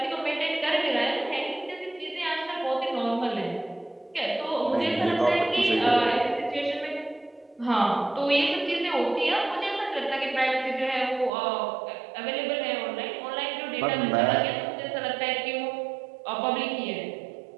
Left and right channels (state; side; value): drops out; left; at 11.3 s